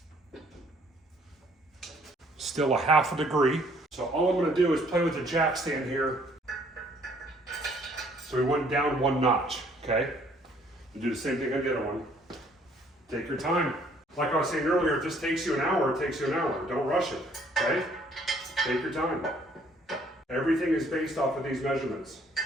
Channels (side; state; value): both; normal; correlation 0.62